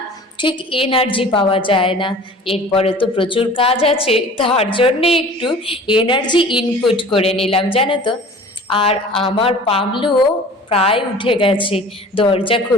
ঠিক এনার্জি পাওয়া যায় না। এরপরে তো প্রচুর কাজ আছে, তার জন্যে একটু এনার্জি ইনপুট করে নিলাম, জানো তো। আর আমার পামলুও প্রায় উঠে গেছে, দরজা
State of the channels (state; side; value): normal; both; correlation 0.44